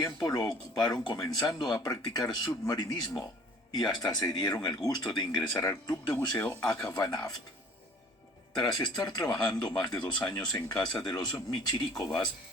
lo ocuparon comenzando a practicar submarinismo y hasta se dieron el gusto de ingresar al club de buceo Akhvanaft. Tras estar trabajando más de 2 años en casa de los Michirikovas,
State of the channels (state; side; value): normal; both; correlation 0.50